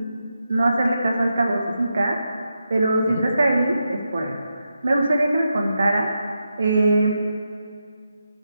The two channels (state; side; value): inverted; both; correlation -0.86